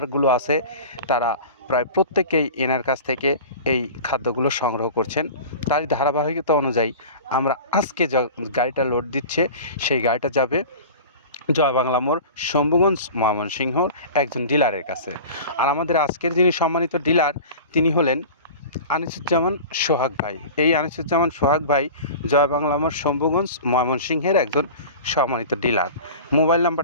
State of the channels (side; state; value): both; inverted; correlation -0.36